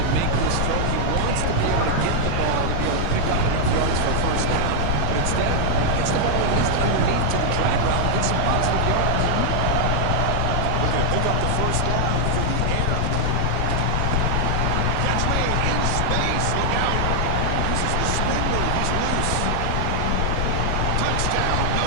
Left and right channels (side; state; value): both; different; correlation -0.01